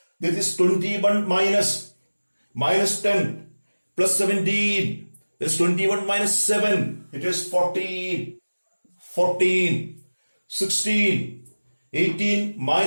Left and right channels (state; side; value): inverted; both; correlation -1.00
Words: This is 21 minus 10 plus 17. This is 21 minus 7. It is 14. 16. 18